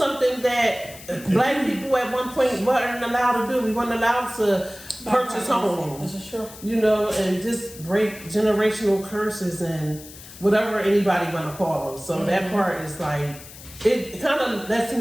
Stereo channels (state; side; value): noise; left; hiss, 17 dB below the sound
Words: that black people at one point weren't allowed to do. We weren't allowed to purchase homes. This is true. And just break generational curses and whatever anybody want to call them. So that part is like, it kind of lets